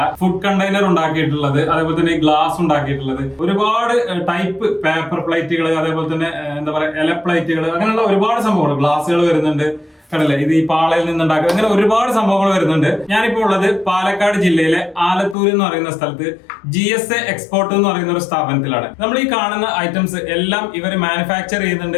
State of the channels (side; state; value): right; drops out; at 15.4 s